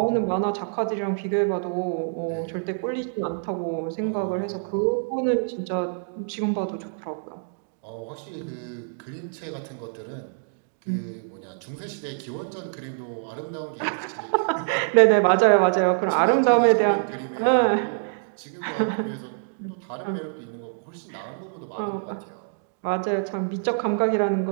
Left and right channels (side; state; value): left; silent; digital silence